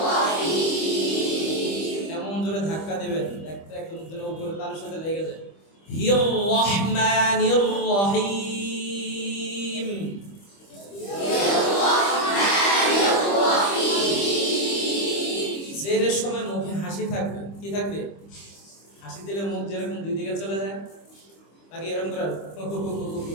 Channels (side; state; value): right; late; 25 ms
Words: এমন জোরে ধাক্কা দিবেন একদম উপরে তার সাথে লেগে যায়। হির রহমানির রহিম। জেরের সময় মুখে হাসি থাকবে। কি থাকবে? হাসি দিলে মুখ যেরকম দুই দিকে চলে যায়, নাকি এরকম করে